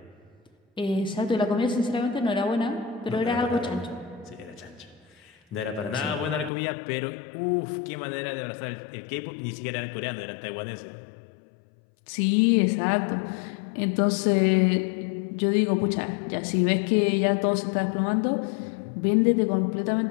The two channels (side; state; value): right; drops out; at 6.5 s